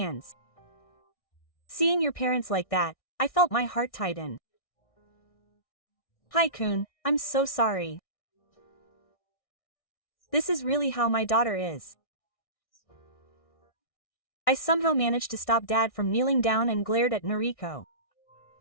Seeing your parents like that, I felt my heart tighten. Hi Kun, I'm so sorry. This is really how my daughter is. I somehow managed to stop Dad from kneeling down and glared at Noriko.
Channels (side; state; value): right; late; 1.6 ms